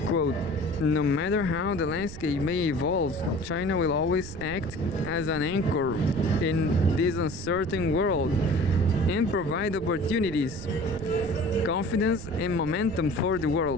Quote, no matter how the landscape may evolve, China will always act as an anchor in this uncertain world and provide opportunities, confidence, and momentum for the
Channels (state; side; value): noise; right; rumble, 12 dB below the sound